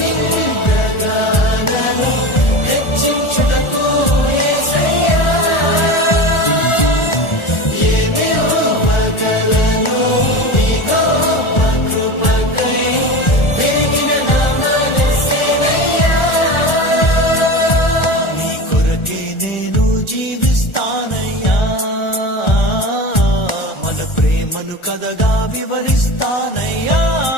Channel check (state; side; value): late; right; 1.4 ms